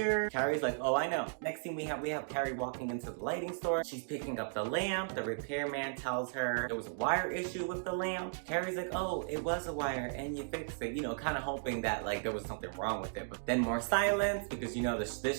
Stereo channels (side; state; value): left; silent; digital silence